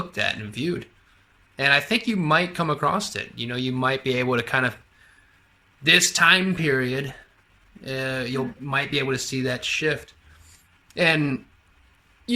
at and viewed. And I think you might come across it. You know, you might be able to kind of this time period, you'll might be able to see that shift. And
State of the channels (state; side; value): identical; both; correlation 1.00